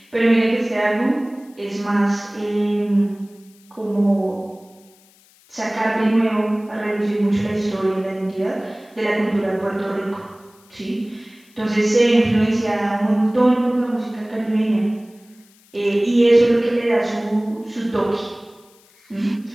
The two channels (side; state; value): left; noise; hiss, 30 dB below the sound